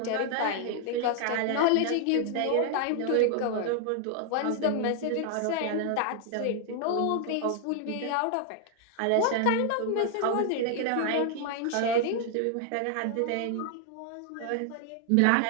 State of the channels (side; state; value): both; different; correlation 0.00